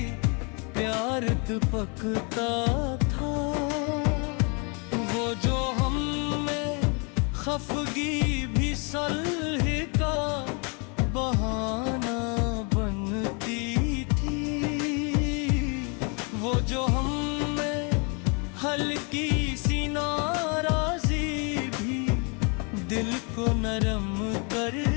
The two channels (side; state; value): right; quieter; 34.4 dB